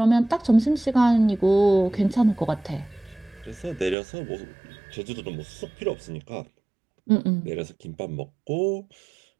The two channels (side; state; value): left; drops out; at 4.0 s